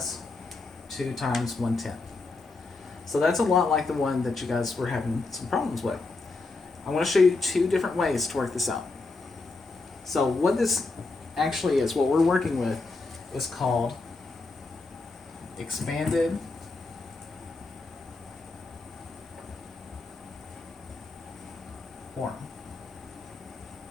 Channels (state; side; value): quieter; right; 3.6 dB